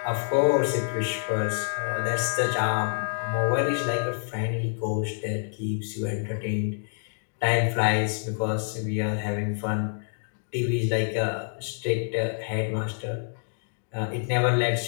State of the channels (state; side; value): silent; right; digital silence